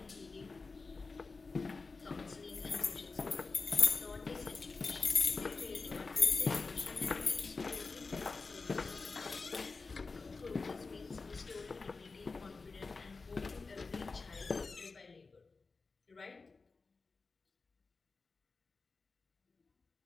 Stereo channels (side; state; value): right; quieter; 4.1 dB